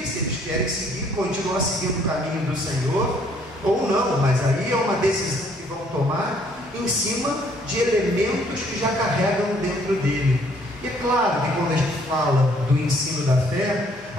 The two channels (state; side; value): normal; both; correlation 0.63